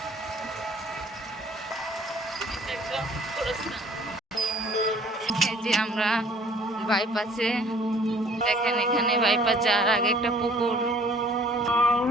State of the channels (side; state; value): both; normal; correlation 0.55